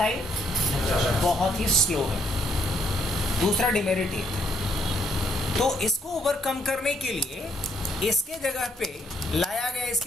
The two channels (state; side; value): normal; both; correlation 0.71